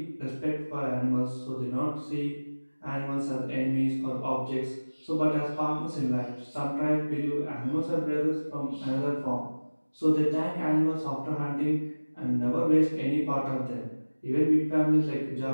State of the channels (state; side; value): inverted; both; correlation -1.00